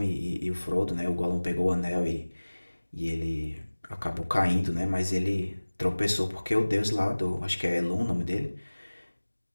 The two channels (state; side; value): inverted; both; correlation -1.00